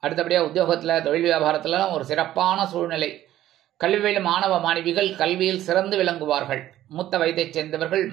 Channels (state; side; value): quieter; left; 13.3 dB